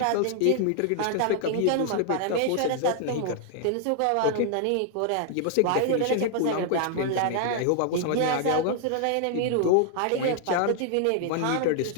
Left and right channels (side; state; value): both; different; correlation 0.00